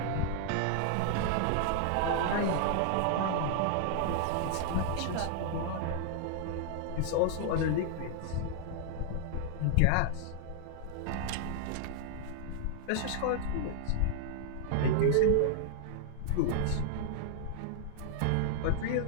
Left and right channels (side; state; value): both; different; correlation -0.01